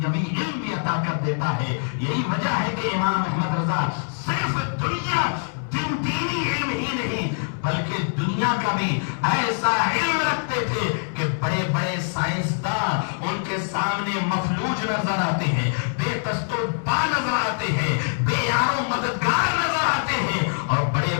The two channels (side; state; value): right; silent; digital silence